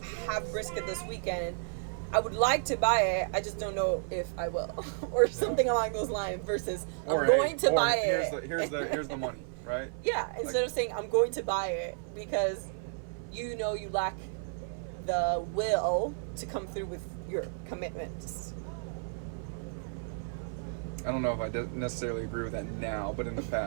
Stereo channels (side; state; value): left; silent; 56 dB below the other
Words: have brisket this weekend. I would like to buy it. I just don't know if I will, or something along those lines. Versus, I'm going to buy it. Here's the money, right? Yeah. Instead of saying I'm going to buy it because you know you lack the will to come through with your commitments. I don't know if I necessarily agree with that now, but in the